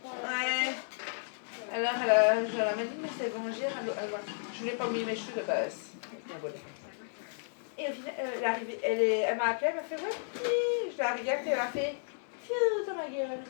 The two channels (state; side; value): silent; right; digital silence